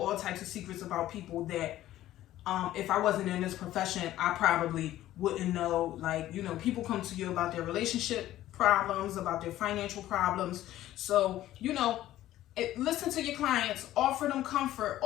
types of secrets about people that if I wasn't in this profession, I probably wouldn't know. Like, people come to you about their relationship problems, about their financial problems. So, listen to your clients, offer them comfort,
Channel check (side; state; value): right; quieter; 14.1 dB